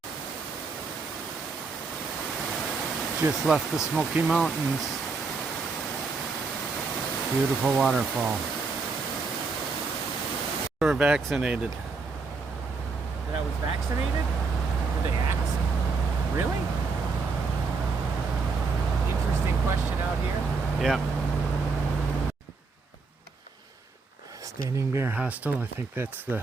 Just left the Smoky Mountains. Beautiful waterfall. We're vaccinated. That I was vaccinated? Did they ask? Really? Interesting question out here. Yeah. Standing Bear Hostel. I think that's the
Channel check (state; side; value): quieter; left; 4.4 dB